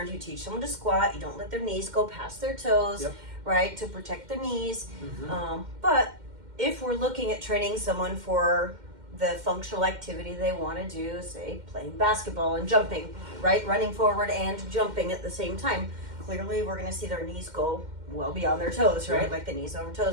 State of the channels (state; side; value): late; left; 2.1 ms